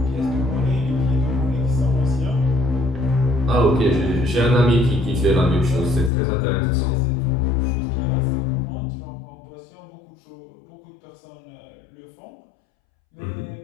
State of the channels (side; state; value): right; drops out; at 6.1 s